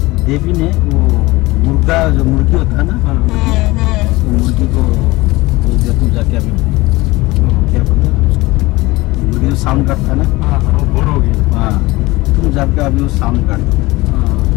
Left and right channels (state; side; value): quieter; right; 20.8 dB